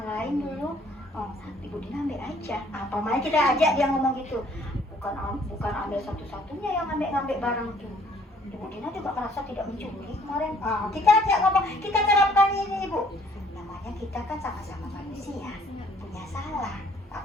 lain dulu. Ibu Dina ambil aja. Apa makanya kita ajak dia ngomong gitu. Bukan ambil satu-satunya yang ngambil barang itu. Ibu Dina juga merasa tidak mencuri kemarin. Kita ajak ngomong, kita terapkan ini Ibu. Namanya kita kan sama-sama manusia, punya salah.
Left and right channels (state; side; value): normal; both; correlation 0.60